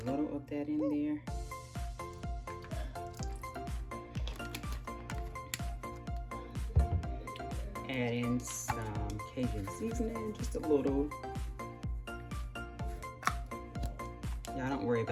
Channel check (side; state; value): both; identical; correlation 1.00